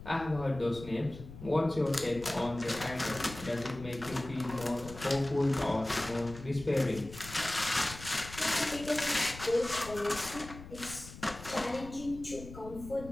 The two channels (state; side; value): noise; left; rumble, 14 dB below the sound